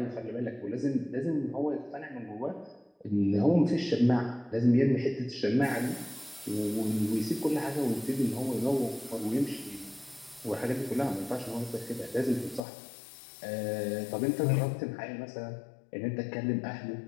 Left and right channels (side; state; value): right; drops out; at 12.7 s